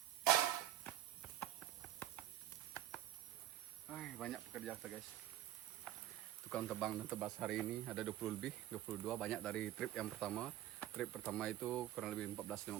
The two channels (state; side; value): quieter; left; 13.2 dB